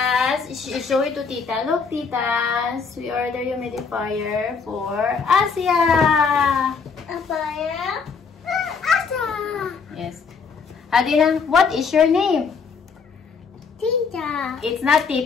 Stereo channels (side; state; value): right; quieter; 5.4 dB